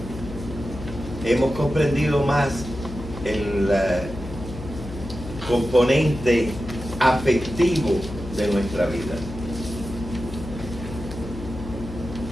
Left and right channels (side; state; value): left; noise; hum, 11 dB below the sound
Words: Hemos comprendido más el componente afectivo de nuestra vida.